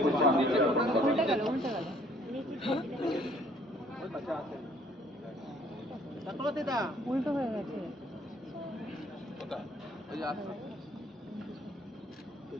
পুষ্পাঞ্জলি জ্ঞাপন করবার উল্টে জন্য। গেল উল্টে গেল উল্টো হয়ে গেছে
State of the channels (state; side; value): normal; both; correlation 0.60